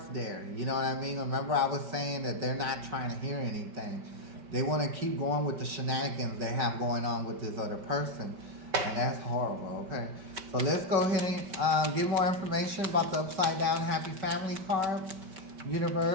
there. You know what I mean? Remember I was saying that they're not trying to hear anything. They want to keep going with the shenanigans they have going on with this other person. And that's horrible, okay? So let's go ahead and get more information about the upside down happy family card,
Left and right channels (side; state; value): left; late; 5.1 ms